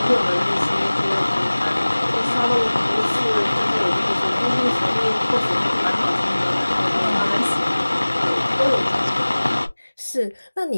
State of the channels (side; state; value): both; inverted; correlation -1.00